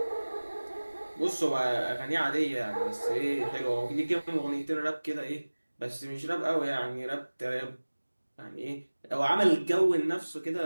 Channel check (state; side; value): inverted; both; correlation -1.00